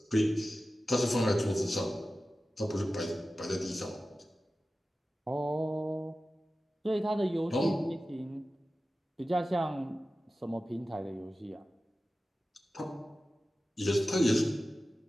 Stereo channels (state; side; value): normal; both; correlation 0.95